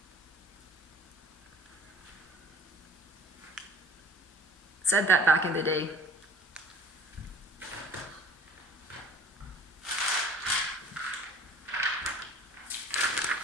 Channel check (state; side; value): normal; both; correlation 0.48